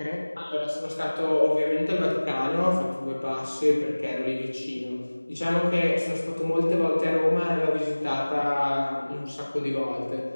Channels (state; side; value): inverted; both; correlation -1.00